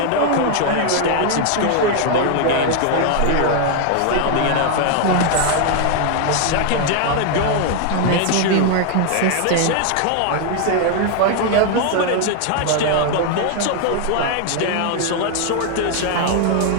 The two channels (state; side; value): different; both; correlation 0.00